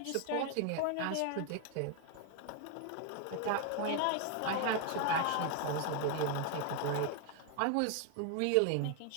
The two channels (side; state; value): both; different; correlation 0.01